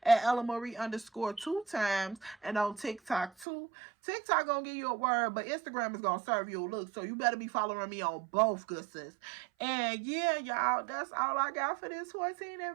at ellamarie_2 and on TikTok too. TikTok gonna give you a word, but Instagram is gonna serve you a look. So you better be following me on both, good sis. And yeah, y'all, that's all I got for this 14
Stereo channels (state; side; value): drops out; left; at 3.5 s